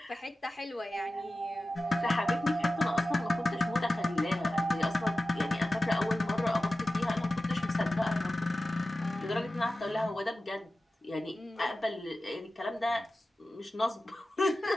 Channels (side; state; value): both; normal; correlation 0.95